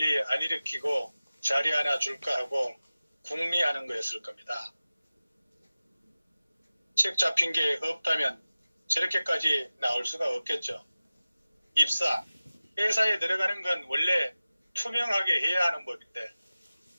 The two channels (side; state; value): both; inverted; correlation -0.96